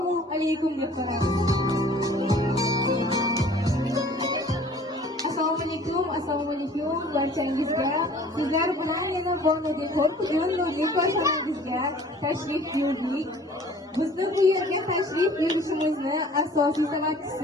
alaykum deb so'rayman. Assalomu alaykum barchangizga. Sizlar bilan yana Borno-Dekor bugun ko'rsanangizga tashrif buyurdik. Bizni bu yerga tashrif buyurishimizni asosiy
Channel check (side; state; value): both; normal; correlation 0.50